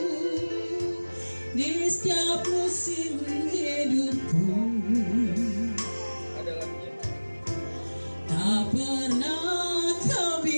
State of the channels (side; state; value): both; inverted; correlation -1.00